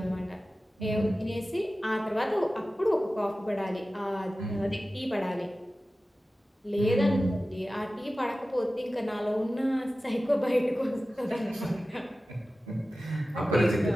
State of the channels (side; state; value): both; normal; correlation 0.95